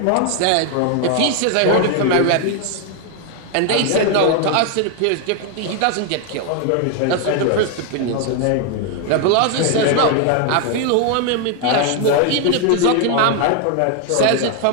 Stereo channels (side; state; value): both; different; correlation 0.01